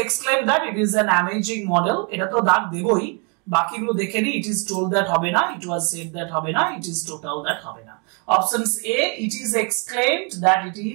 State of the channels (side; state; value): left; quieter; 35.3 dB